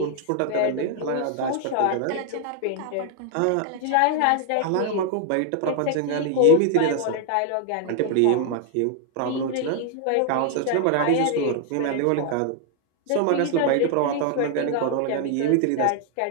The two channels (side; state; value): both; different; correlation 0.00